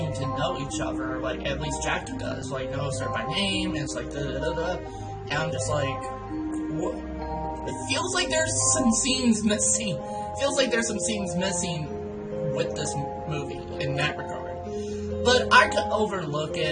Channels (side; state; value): both; identical; correlation 1.00